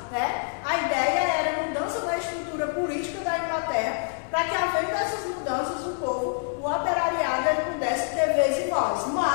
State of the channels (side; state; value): right; silent; 61 dB below the other